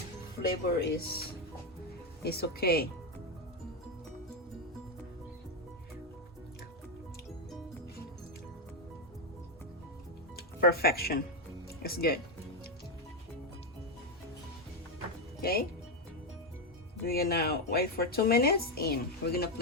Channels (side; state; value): both; normal; correlation 0.06